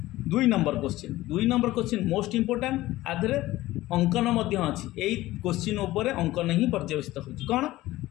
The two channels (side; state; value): right; quieter; 16.9 dB